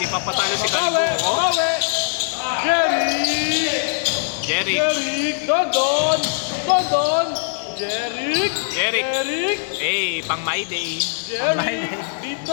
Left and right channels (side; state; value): right; silent; digital silence